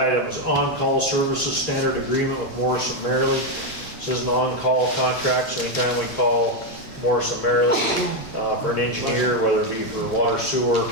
is on-call services standard agreement with Morrison Merrily. This is an on-call contract, so anytime we call Morrison Merrily for an engineer, whether it be for water, sewer,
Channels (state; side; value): late; right; 2.7 ms